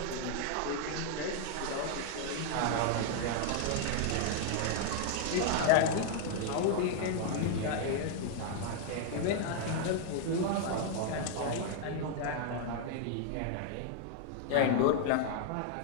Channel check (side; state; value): both; different; correlation 0.00